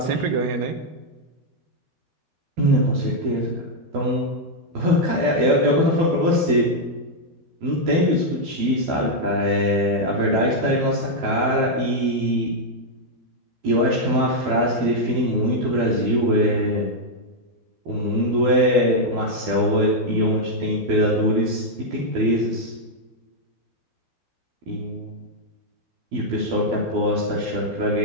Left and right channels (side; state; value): left; late; 12 ms